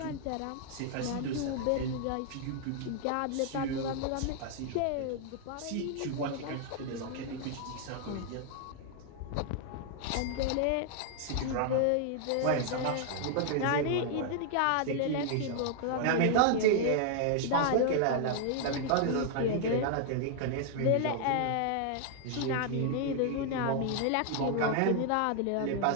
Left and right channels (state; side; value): different; both; correlation 0.00